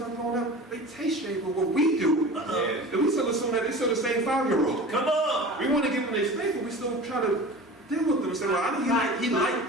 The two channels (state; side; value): normal; both; correlation 0.36